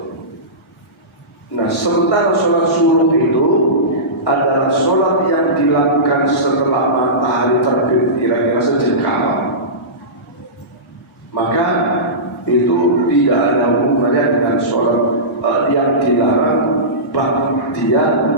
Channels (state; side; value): normal; both; correlation -0.20